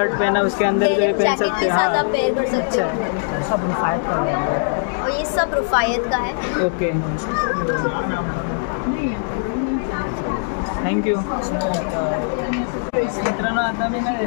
पहना उसके अंदर जो ये पहन सकते हैं. हाँ, पेयर कर सकते अच्छा है. हो। और ये सब रुफायत का है। Okay, thank you. मित्रांनो, आता मी ना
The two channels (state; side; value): silent; right; digital silence